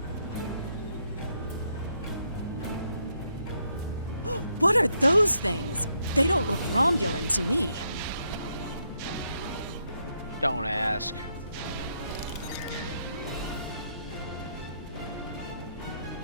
What are those things? They don't look Romulan to me. Don't ask.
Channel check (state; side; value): inverted; both; correlation -0.76